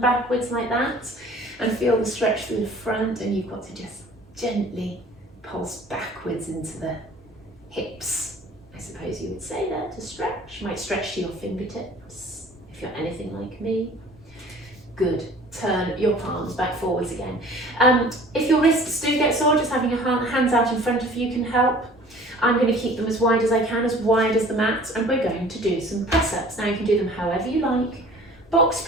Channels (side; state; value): both; normal; correlation 0.48